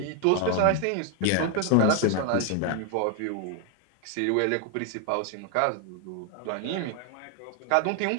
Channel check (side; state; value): both; different; correlation 0.01